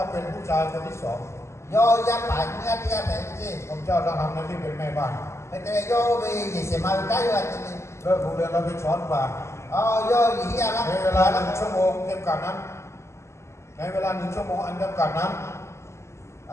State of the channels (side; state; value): right; late; 0.13 ms